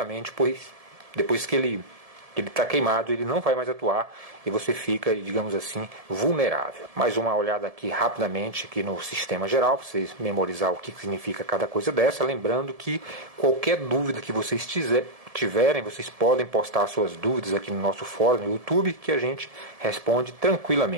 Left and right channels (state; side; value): late; left; 1.7 ms